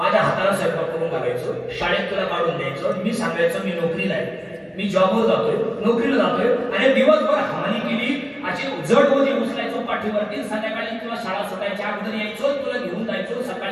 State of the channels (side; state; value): both; identical; correlation 1.00